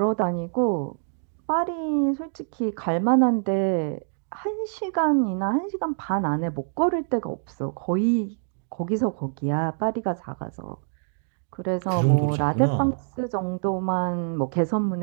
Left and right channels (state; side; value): silent; left; digital silence